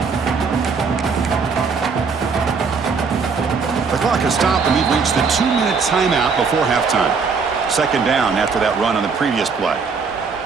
The clock has stopped, and we've reached the 2-minute timeout before halftime. 2nd down after that run on the previous play.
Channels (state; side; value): quieter; left; 5.2 dB